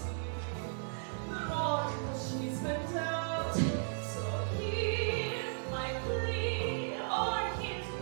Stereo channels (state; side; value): silent; left; digital silence